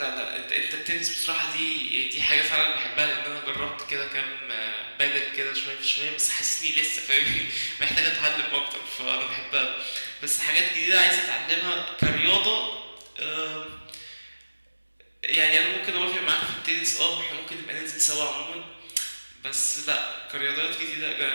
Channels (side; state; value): both; inverted; correlation -1.00